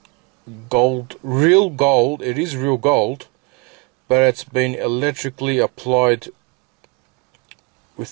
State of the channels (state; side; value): quieter; left; 29.2 dB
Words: gold, real gold. It is real gold, but it's been electrically applied